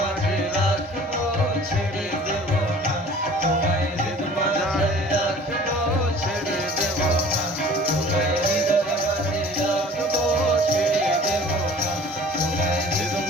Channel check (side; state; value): both; normal; correlation 0.47